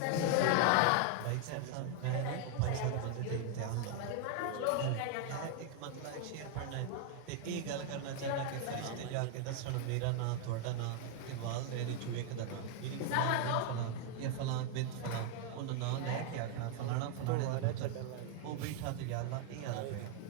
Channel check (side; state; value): both; different; correlation 0.00